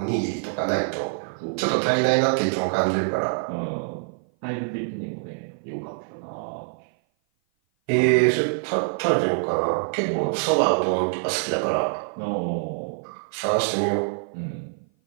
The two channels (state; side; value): silent; left; 56 dB below the other